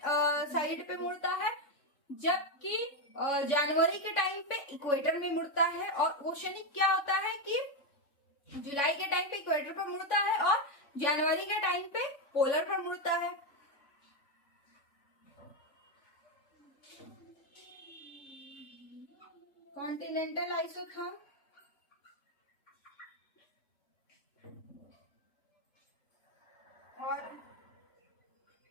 साइड पे मुड़ता है, जबकि जनवरी के टाइम पे इक्वेटर में मुड़ता है। और ओशनिक क्या होता है कि जुलाई के टाइम पे इक्वेटर पर मुड़ता है और जनवरी के टाइम पे पोलर पर मुड़ता है। कॉन्टिनेंटल आइसोथर्म और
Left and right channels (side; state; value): right; late; 3.6 ms